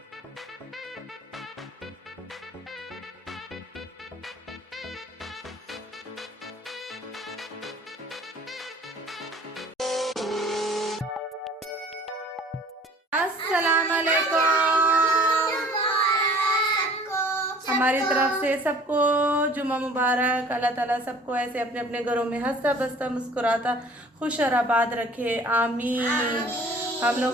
अस्सलाम वालेकुम। हमारी तरफ से सबको जुम्मा मुबारक। अल्लाह ताला सबको ऐसे अपने अपने घरों में हंसता बसता मुस्कुराता खुश और आबाद रखे, आमीन। हम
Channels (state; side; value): normal; both; correlation 0.50